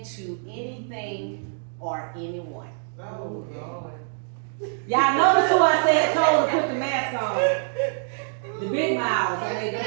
anything or anyone. Oh, Lord. Y'all notice who I said told to put the mask on? The big mouths, I made them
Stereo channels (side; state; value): left; silent; digital silence